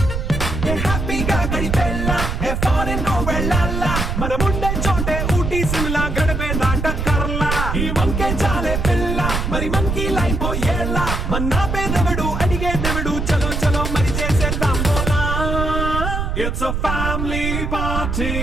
హ్యాపీగా గడిపెల్లా ఫారెన్ వెళ్ళాలా మనం ఉండే చోటే ఊటీ సిమ్లా గడిపే దాటక్కర్లా ఈ వంకే చాలే పిల్ల మరి మరి మంకీ లైపోయేలా మన్నా పేదవడు అడిగేదెవడు చలో చలో మరి చేసేద్దాం బోలా It's a family party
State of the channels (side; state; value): right; noise; rumble, 1 dB below the sound